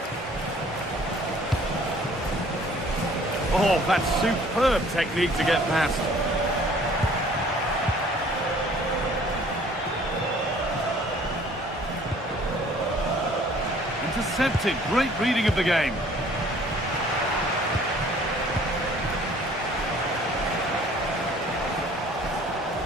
Oh, that's superb technique to get past. Intercepted. Great reading of the game.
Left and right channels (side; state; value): both; normal; correlation 0.55